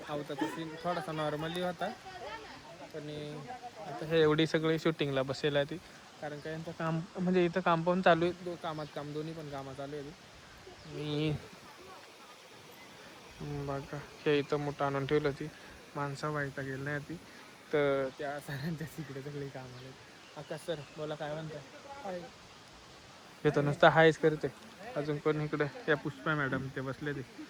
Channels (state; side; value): identical; both; correlation 1.00